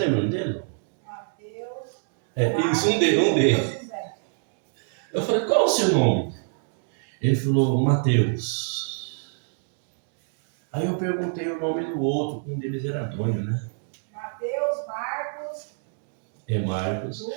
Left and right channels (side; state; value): left; silent; 58 dB below the other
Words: o nome dele? Mateus. Isso, um deles. Eu falei, qual o seu nome? Ele falou, Mateus. Aí eu perguntei o nome do outro, um deles era Antônio, né? Mateus, Marcos. Marcos.